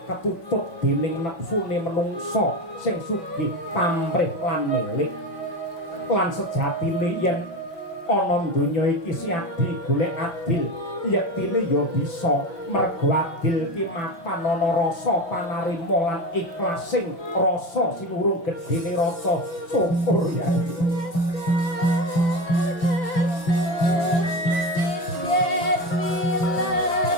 ketutup dening nepsune menungsa sing sugih pamrih lan milik. Lan sejatine yen ana donya iki Siadi golek adil, yektine ya bisa. Merga adil ki mapan ana rasa panarima lan ikhlasing rasa sinurung gedene rasa syukur ya.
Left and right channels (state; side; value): late; right; 6.0 ms